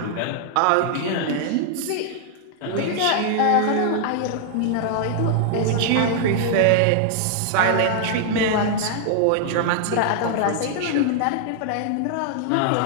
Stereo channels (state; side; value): different; both; correlation -0.01